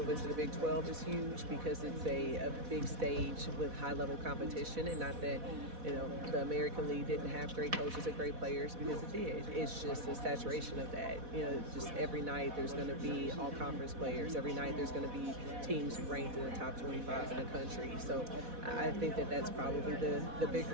to the Big 12 is huge because it's a big stage with high-level competition, and not that the American League didn't have great coaches and great players, because it did. It's just a saturation of that. Just every night there's going to be all-conference players. Every night there's going to be teams ranked in the top 25 in the country. So I think that's probably the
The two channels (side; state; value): left; late; 4.1 ms